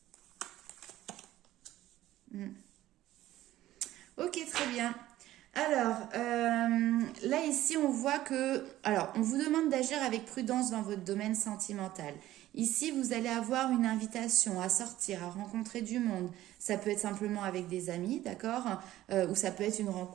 Ok, très bien. Alors, là, ici, on voit que... Alors, on vous demande d'agir avec prudence dans votre domaine sentimental. Ici, vous allez avoir une invitation à sortir, à rencontrer du monde. Ça peut être simplement avec des amis, d'accord? Ou ça peut être une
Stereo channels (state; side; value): quieter; left; 14.6 dB